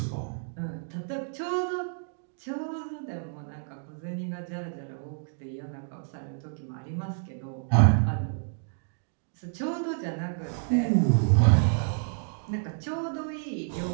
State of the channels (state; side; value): silent; left; digital silence